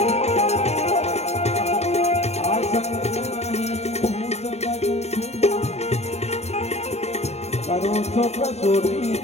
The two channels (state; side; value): late; right; 0.31 ms